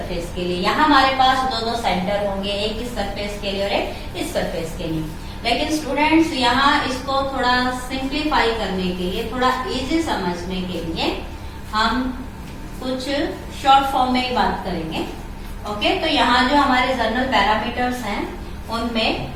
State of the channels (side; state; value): both; identical; correlation 1.00